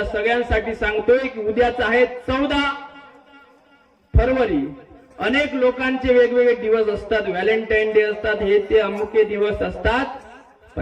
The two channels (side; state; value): both; identical; correlation 1.00